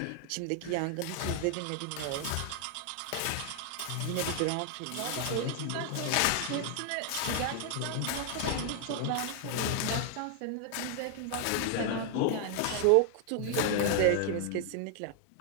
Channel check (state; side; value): different; both; correlation 0.00